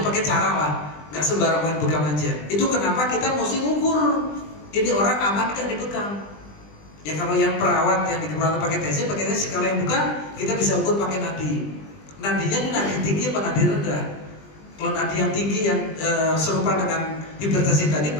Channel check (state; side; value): late; right; 20 ms